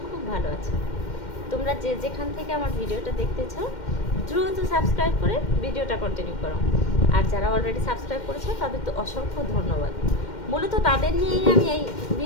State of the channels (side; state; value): right; late; 2.1 ms